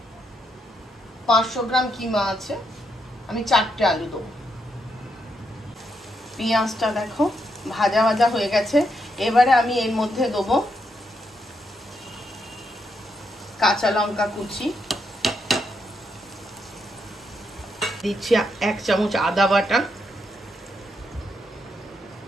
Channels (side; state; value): both; normal; correlation 0.79